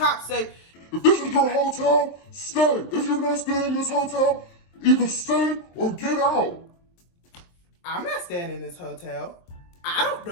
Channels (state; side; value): late; right; 23 ms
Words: say, If this is your hotel, stay. If you're not staying in this hotel, either stay or get out. I'm not staying in this hotel. I don't